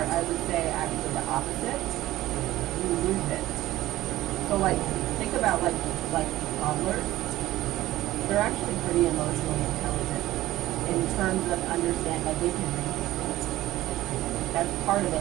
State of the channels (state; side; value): quieter; left; 15.9 dB